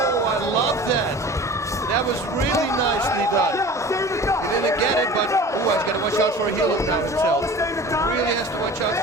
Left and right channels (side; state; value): both; normal; correlation 0.40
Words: I love that. That was really nicely done. He didn't get it, but oh, he's got to watch out for a heel hook now himself. Really has to watch out